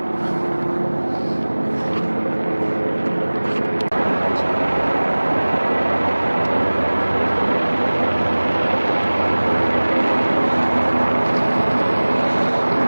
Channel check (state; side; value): inverted; both; correlation -1.00